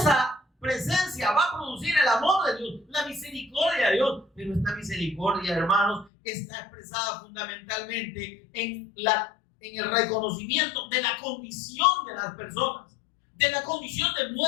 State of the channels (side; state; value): right; drops out; at 6.1 s